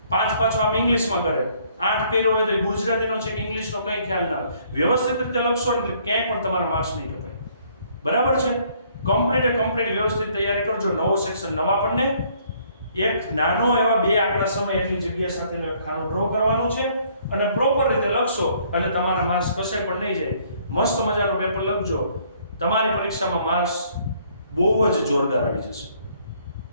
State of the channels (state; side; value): inverted; both; correlation -0.63